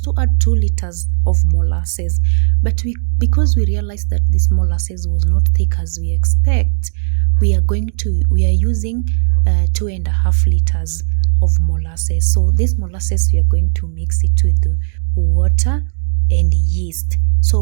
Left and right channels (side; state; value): left; silent; digital silence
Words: to add 2 liters of molasses, but because we realized that this molasses was not thick as we expect, we are using 2.5 liters of molasses. So this molasses, we are going to mix it with water and yeast.